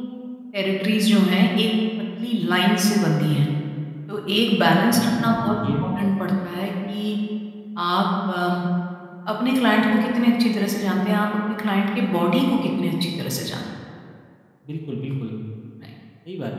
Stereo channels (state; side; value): identical; both; correlation 1.00